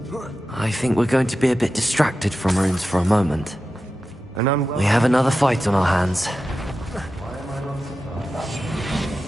I think we're going to be a bit distracted from runes for a moment. And We have another fight on our hands.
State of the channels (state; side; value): normal; both; correlation 0.92